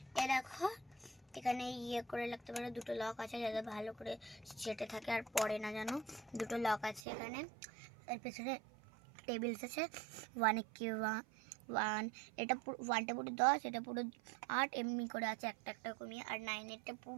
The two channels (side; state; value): left; drops out; at 7.0 s